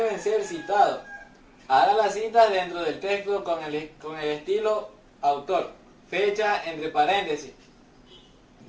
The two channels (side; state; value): both; identical; correlation 1.00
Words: ser citados. Haga las citas dentro del texto con el estilo autor, fecha entre paréntesis.